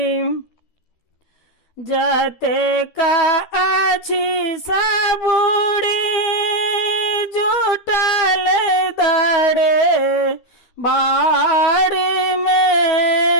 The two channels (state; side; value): late; right; 12 ms